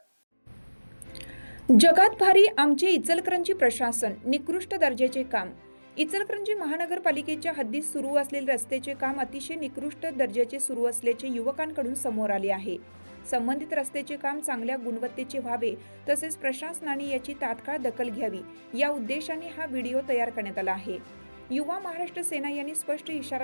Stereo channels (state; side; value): inverted; both; correlation -1.00